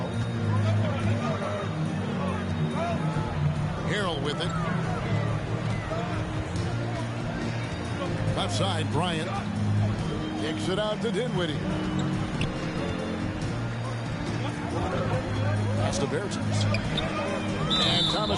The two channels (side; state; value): both; identical; correlation 1.00